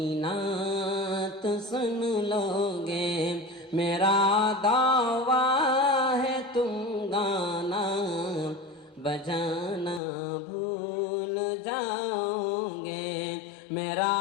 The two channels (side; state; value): right; drops out; at 10.0 s